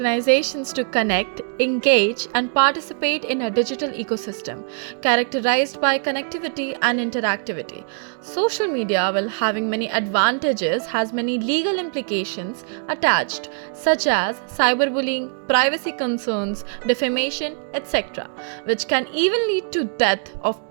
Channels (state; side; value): silent; left; 58 dB below the other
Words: to connect, engage, and participate in a digital ecosystem characterized by connectivity and interactivity. Social media, while having many advantages, has many legal implications attached, such as cyberbullying, privacy concerns, defamation, etc., which can even lead to death of